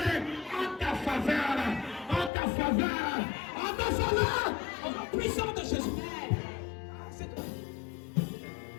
en ta faveur. Au nom puissant de Jésus. C'est toi.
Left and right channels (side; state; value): right; drops out; at 2.3 s